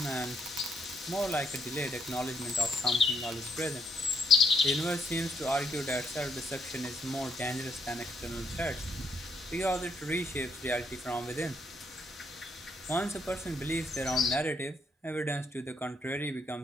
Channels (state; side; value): normal; both; correlation 0.73